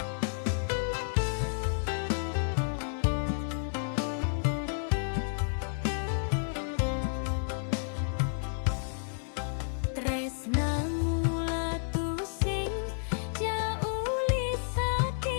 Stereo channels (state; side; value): silent; right; 57 dB below the other